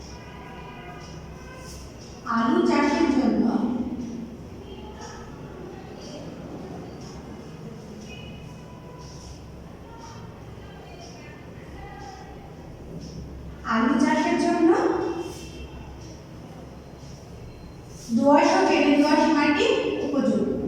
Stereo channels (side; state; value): both; identical; correlation 1.00